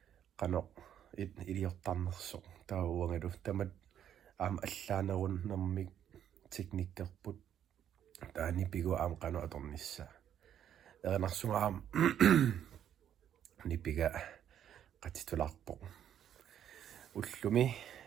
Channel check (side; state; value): left; quieter; 9.9 dB